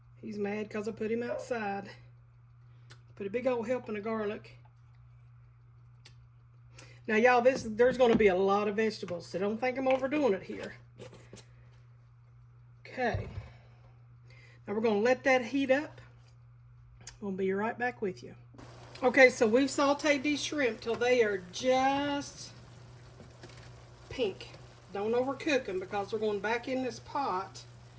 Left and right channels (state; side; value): identical; both; correlation 1.00